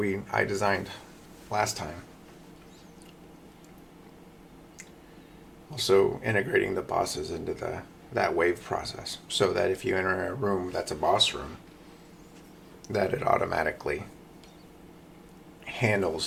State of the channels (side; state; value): both; identical; correlation 1.00